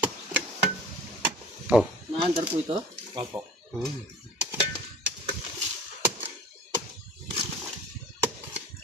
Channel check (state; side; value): normal; both; correlation 0.44